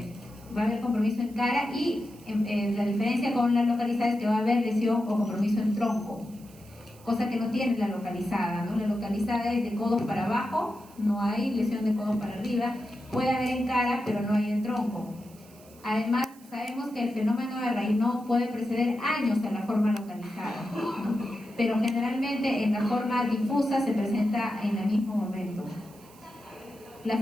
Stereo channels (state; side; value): noise; right; hiss, 25 dB below the sound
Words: haber compromiso en cara, y la diferencia con la localizada es que va a haber lesión o compromiso en tronco, cosa que no tiene la localizada, ¿no? La localizada es de codos para abajo, no hay lesión de codos para arriba, puede haber en cara, pero no hay en tronco. Además, sabemos que el fenómeno de Raynaud puede preceder años a la forma localizada, ¿no? Pero generalmente en la forma difusa se presenta en el mismo momento. La